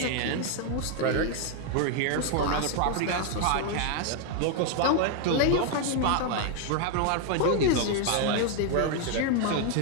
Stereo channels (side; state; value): both; different; correlation 0.00